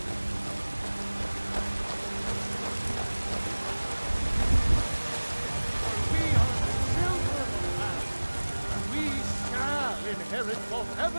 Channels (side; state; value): both; inverted; correlation -1.00